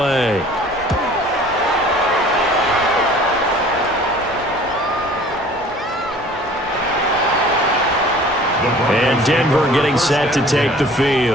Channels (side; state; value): both; normal; correlation 0.49